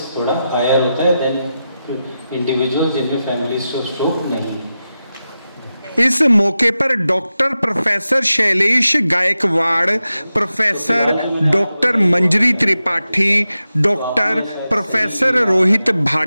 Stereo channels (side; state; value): both; inverted; correlation -0.91